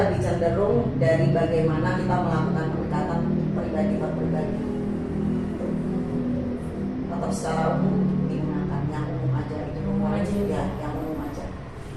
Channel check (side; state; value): both; identical; correlation 1.00